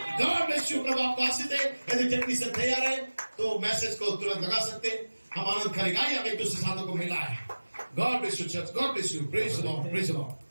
God bless you. प्रभु आपको आशीष दे। यदि टेक्नीशियन तैयार है तो मैसेज को तुरंत लगा सकते हैं, हम आनंद करेंगे। हम एक दूसरे साथों को मिला है। God bless you church, God bless you. Praise the Lord, praise the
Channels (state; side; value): inverted; both; correlation -1.00